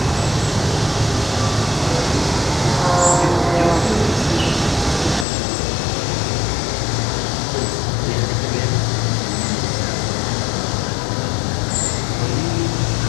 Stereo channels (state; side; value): drops out; right; at 5.2 s